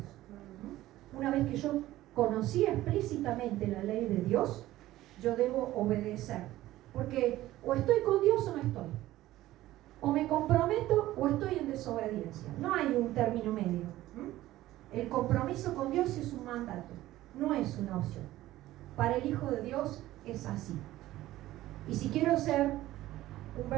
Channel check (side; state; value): left; quieter; 15.6 dB